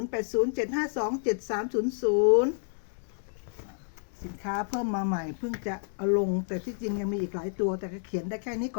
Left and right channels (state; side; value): silent; right; digital silence